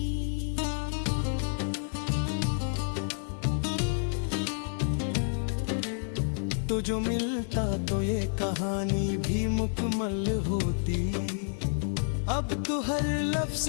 तो जो मिलता तो ये कहानी भी मुकम्मल होती। अब तो हर लफ्ज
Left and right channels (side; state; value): right; silent; digital silence